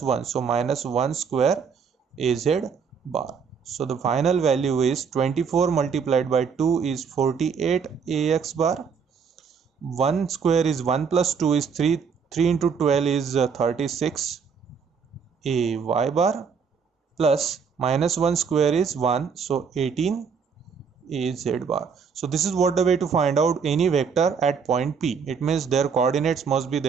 1. So minus 1 square az bar. So the final value is 24 multiplied by 2 is 48 ax bar. 1 square is 1 plus 2 is 3. 3 into 12 is 36 a y bar plus minus 1 square is 1. So 18 a z bar. So this is what the way to find out any vector at point P. It means their coordinates must be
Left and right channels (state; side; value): quieter; left; 6.1 dB